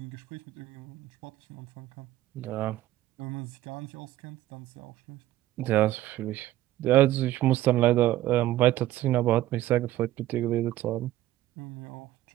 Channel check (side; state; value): left; quieter; 14.7 dB